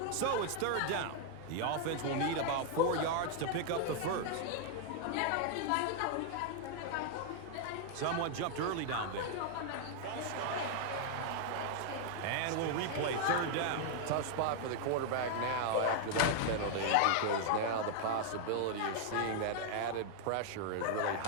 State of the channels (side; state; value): both; different; correlation 0.00